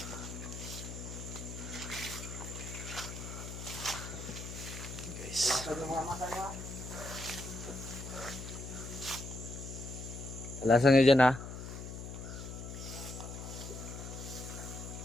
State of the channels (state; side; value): noise; left; hum, 8 dB below the sound